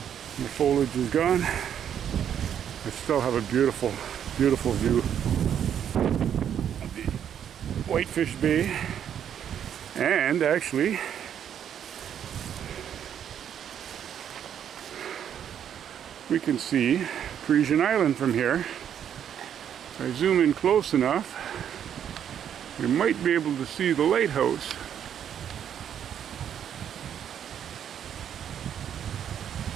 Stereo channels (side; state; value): left; quieter; 9.2 dB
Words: foliage is gone. I still have a beautiful, beautiful view of the Whitefish Bay, and actually we can see Parisian Island from here. If I zoom in close enough, we might be able to see the lighthouse.